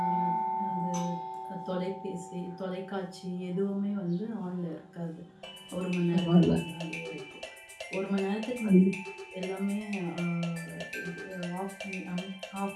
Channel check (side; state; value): both; identical; correlation 1.00